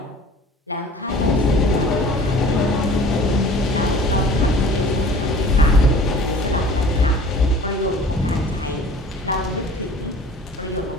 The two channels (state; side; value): normal; both; correlation 0.47